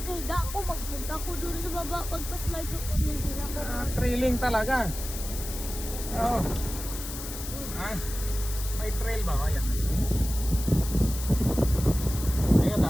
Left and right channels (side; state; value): left; noise; hiss, 9 dB below the sound